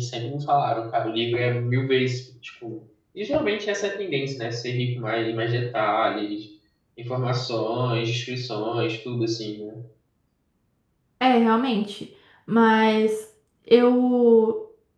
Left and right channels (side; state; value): both; identical; correlation 1.00